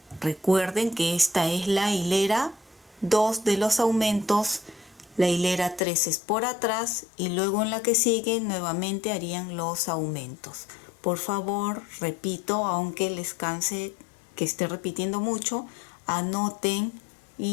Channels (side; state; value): right; drops out; at 5.8 s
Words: Recuerden que esta es la hilera 2 de los aumentos. La hilera 3 es por atrás y luego en la que sigue nuevamente harían los aumentos. por favor, repito, aunque les canse que esté repitiendo mucho, anoten